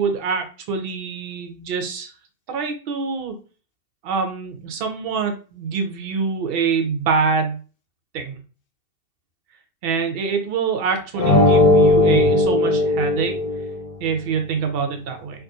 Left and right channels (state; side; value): late; left; 2.7 ms